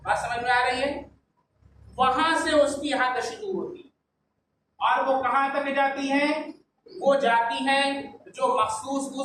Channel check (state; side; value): identical; both; correlation 1.00